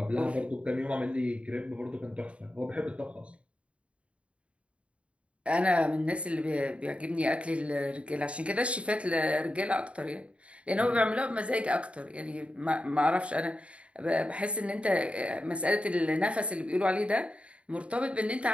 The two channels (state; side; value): late; left; 0.061 ms